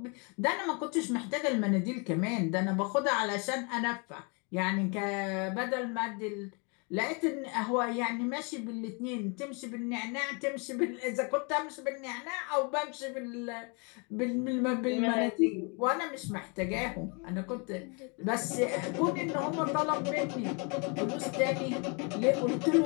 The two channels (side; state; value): right; quieter; 33.6 dB